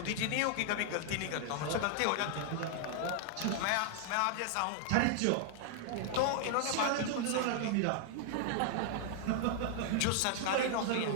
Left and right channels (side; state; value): both; different; correlation 0.00